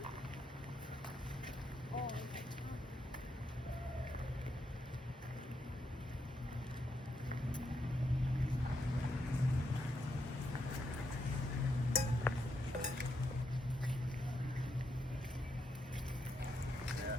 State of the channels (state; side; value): normal; both; correlation 0.81